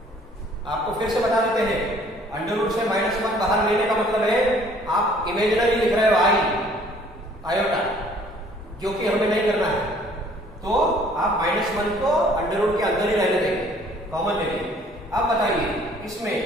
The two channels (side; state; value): both; normal; correlation 0.57